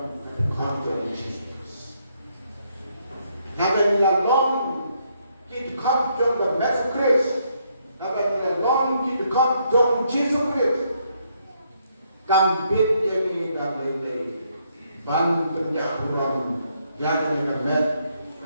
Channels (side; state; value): both; inverted; correlation -0.73